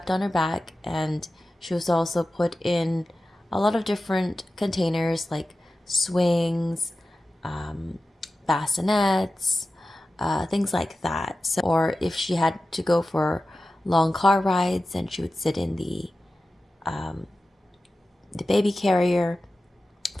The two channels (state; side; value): normal; both; correlation 0.94